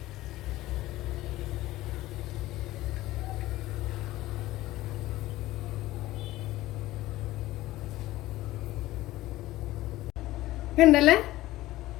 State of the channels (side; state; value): right; quieter; 16.7 dB